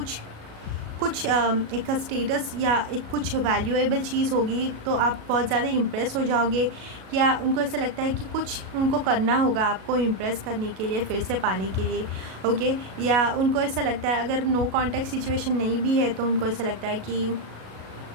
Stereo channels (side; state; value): left; late; 37 ms